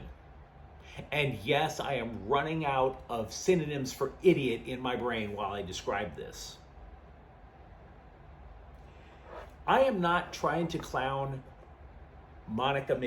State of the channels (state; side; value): identical; both; correlation 1.00